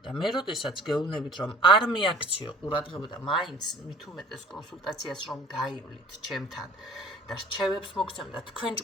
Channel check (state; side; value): normal; both; correlation 0.50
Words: და მე როდესაც გეუბნებით, რომ არ მიაქციო ყურადღება და მაინც მით უმეტეს კონსულტაციას რომ გაივლით ჩემთან და რჩევებს მოგცემ და თქვენ